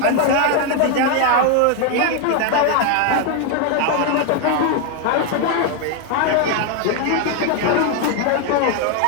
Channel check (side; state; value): both; different; correlation 0.01